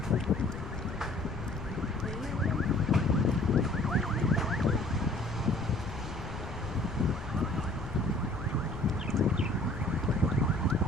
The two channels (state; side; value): noise; left; rumble, 10 dB below the sound